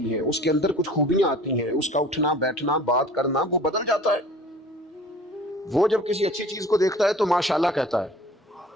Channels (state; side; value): normal; both; correlation 0.46